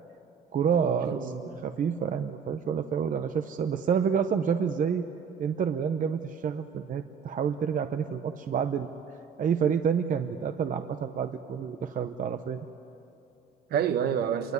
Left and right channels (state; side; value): quieter; left; 7.0 dB